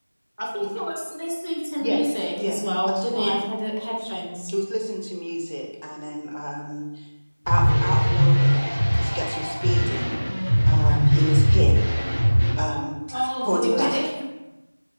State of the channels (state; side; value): inverted; both; correlation -1.00